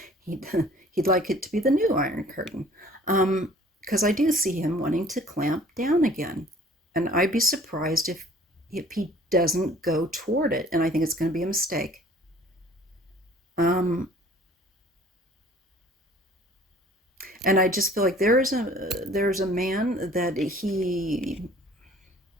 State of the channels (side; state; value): both; normal; correlation 0.52